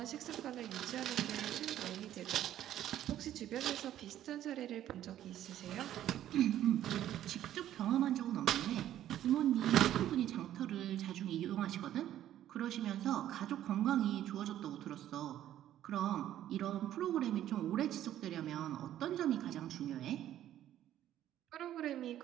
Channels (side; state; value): left; quieter; 12.0 dB